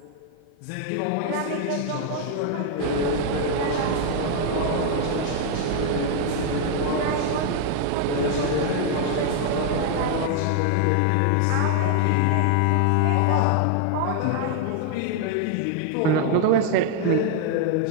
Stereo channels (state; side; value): different; both; correlation 0.00